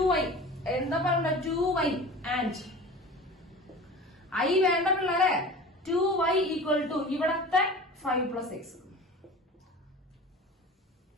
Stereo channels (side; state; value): both; normal; correlation 0.37